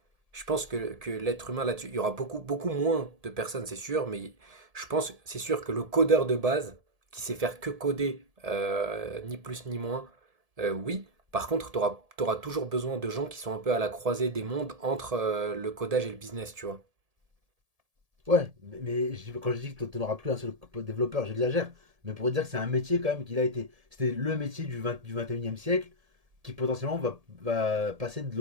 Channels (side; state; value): left; late; 1.7 ms